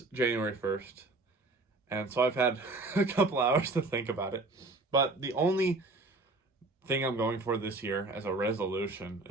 January 1st. And so I've had a couple hours to think about it. But the only thing I'm going for this year as a resolution,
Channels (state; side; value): quieter; left; 3.1 dB